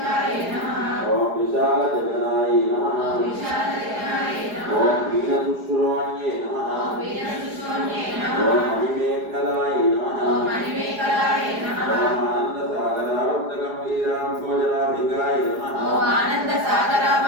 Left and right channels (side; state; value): left; late; 4.8 ms